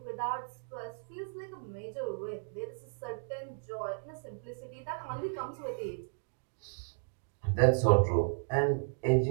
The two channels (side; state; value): left; silent; digital silence